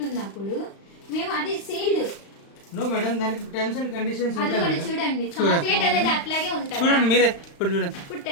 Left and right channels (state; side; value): late; right; 35 ms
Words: ఉన్నప్పుడు మేము అది సీల్డ్ నో మేడం, దానికి టర్మ్స్ అండ్ కండిషన్స్ అది ఉంటాయి కూడా మేడం. చూడండి. చాక్లెట్ అనేది అట్లాగే ఉంటుందా? చూడండి మీరే ఇప్పుడు చూడండి ఇప్పుడు